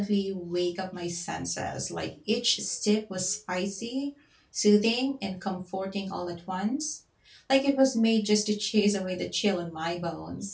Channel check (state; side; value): identical; both; correlation 1.00